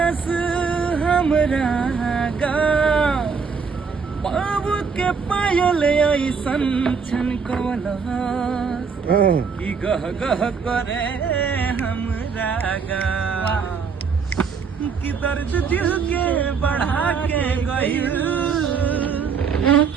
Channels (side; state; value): left; quieter; 5.7 dB